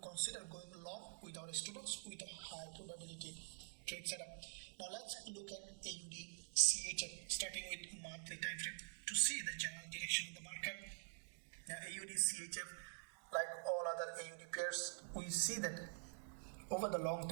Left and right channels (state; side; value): silent; left; digital silence